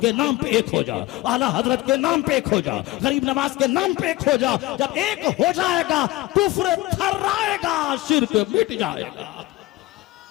के नाम पे एक हो जा, आला हजरत के नाम पे एक हो जा, गरीब नवाज के नाम पे एक हो जा। जब एक हो जाएगा कुफ्र थर्राएगा, शिर्क मिट जाएगा।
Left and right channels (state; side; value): quieter; right; 18.5 dB